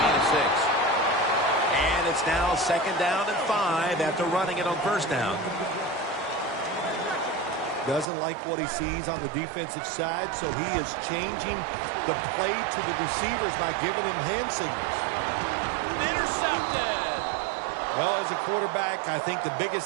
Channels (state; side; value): drops out; left; at 8.1 s